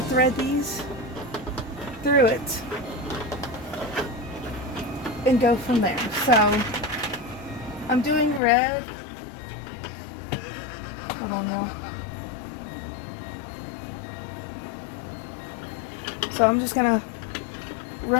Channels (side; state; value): right; drops out; at 8.4 s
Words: thread these through it and go from there. So I'm doing red. Hold on, y'all. So I'm just gonna